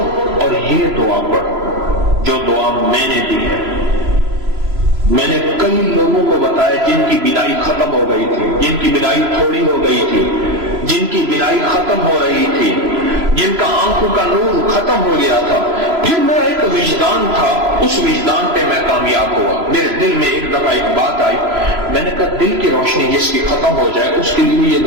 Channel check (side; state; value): left; late; 3.0 ms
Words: اور یہ دعا پڑھو جو دعا میں نے دی ہے. میں نے کئی لوگوں کو بتایا جن کی بینائی ختم ہو گئی تھی، جن کی بینائی تھوڑی ہو گئی تھی، جن کی بینائی ختم ہو رہی تھی، جن کا آنکھوں کا نور ختم ہو گیا تھا. پھر میرا ایک وجدان تھا، اس وجدان پہ میں کامیاب ہوا. میرے دل میں ایک دفعہ ایک بات آئی، میں نے کہا دل کی روشنی جس کی ختم ہو جائے اس کے لیے یہ